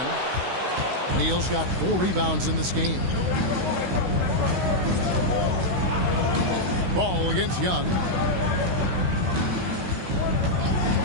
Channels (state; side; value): late; left; 16 ms